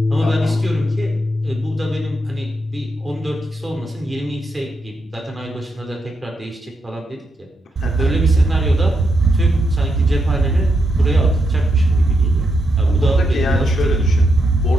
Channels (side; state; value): both; normal; correlation 0.82